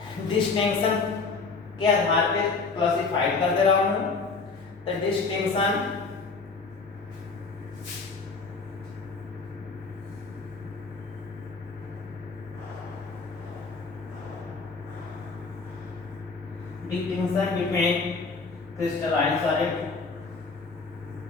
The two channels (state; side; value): quieter; right; 4.3 dB